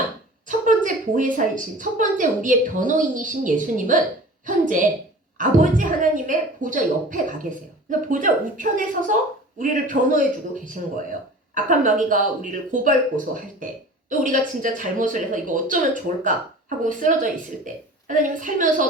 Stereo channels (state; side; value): normal; both; correlation 0.41